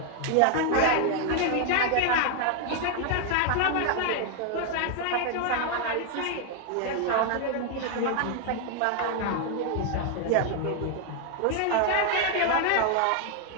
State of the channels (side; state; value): both; different; correlation 0.00